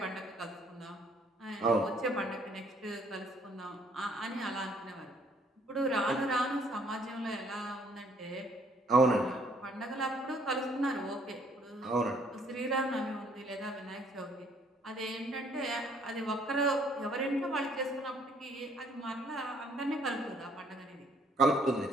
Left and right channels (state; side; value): normal; both; correlation 0.64